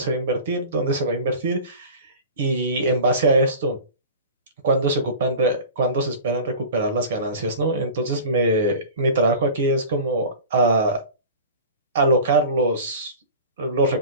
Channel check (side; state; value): both; inverted; correlation -0.37